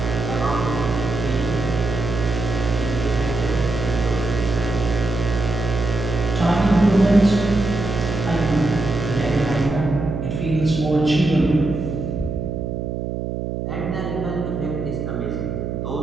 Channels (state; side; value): noise; right; hum, 4 dB below the sound